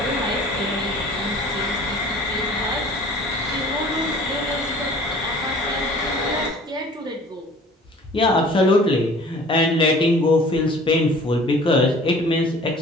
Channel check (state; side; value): normal; both; correlation 0.48